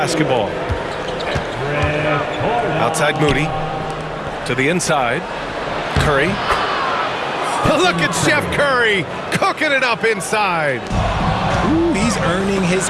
Outside Moody. To the inside. Curry. Look at Chef Curry cooking it up inside. Ooh, he's earning his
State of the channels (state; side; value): identical; both; correlation 1.00